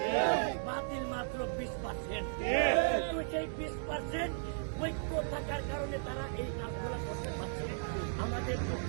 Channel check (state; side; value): silent; left; digital silence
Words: বাতিল মাত্র 20%। সেই 20% ঐক্য থাকার কারণে তারা এই কাজগুলো করতে পারছে। আমাদের